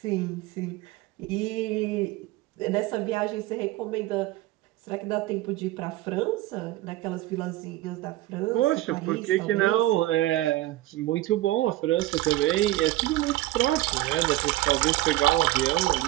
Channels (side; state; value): left; quieter; 16.8 dB